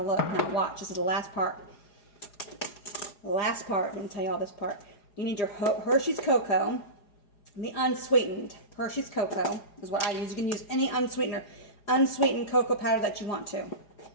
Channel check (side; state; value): right; late; 4.9 ms